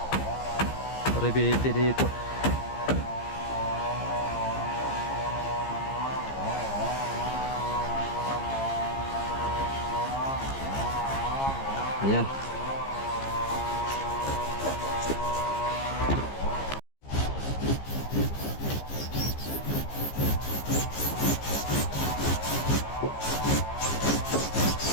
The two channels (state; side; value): late; right; 15 ms